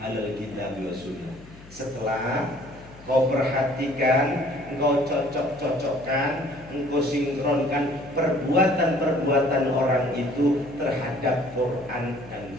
alal kitab wa sunnah. Setelah kau perhatikan, engkau cocok-cocokkan, engkau sinkronkan perbuatan-perbuatan orang itu terhadap Quran dan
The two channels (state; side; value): noise; left; hum, 21 dB below the sound